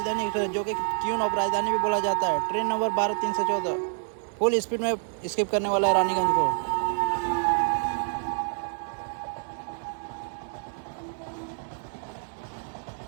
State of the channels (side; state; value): left; silent; digital silence